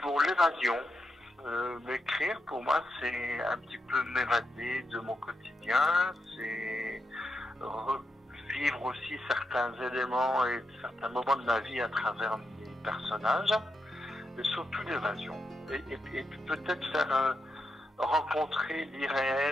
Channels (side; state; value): both; normal; correlation 0.85